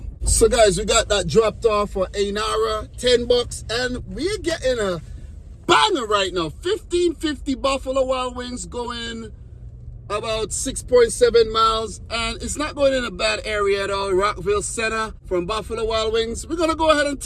So guys, we got that dropped off for Ainara, $10, and we're getting a banger right now. $15.50 Buffalo Wild Wings going about 6.7 miles, and it's not going in a bad area at all. Rockville Center from Buffalo Wild Wings. We're going to go ahead and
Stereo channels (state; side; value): identical; both; correlation 1.00